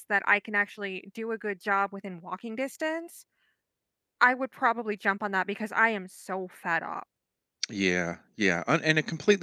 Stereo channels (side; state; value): both; identical; correlation 1.00